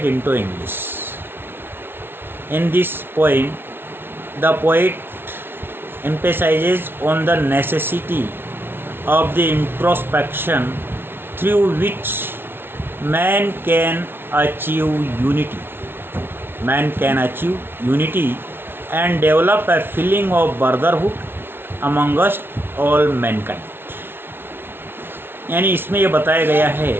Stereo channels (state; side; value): late; left; 0.11 ms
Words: into English. In this poem, the poet emphasizes on the necessity of the introspection through which man can achieve unity. Man can achieve unity and develop a feeling of brotherhood amongst all mankind. यानी इसमें यह बताया गया है